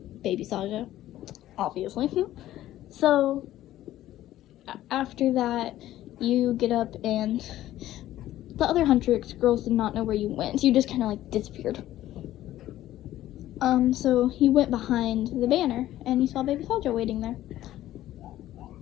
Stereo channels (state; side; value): quieter; right; 14.0 dB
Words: Baby Saja, obviously. So after that, you get up, and the other Huntrix girls did not know where you went. You just kind of like disappeared. So he went behind the banner, and he saw Baby Saja waiting there.